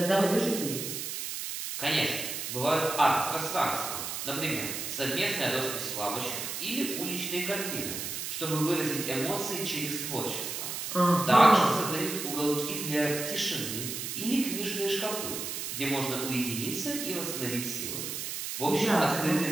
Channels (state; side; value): noise; right; hiss, 5 dB below the sound